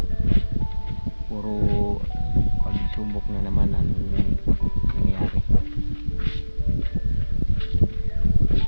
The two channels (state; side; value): inverted; both; correlation -1.00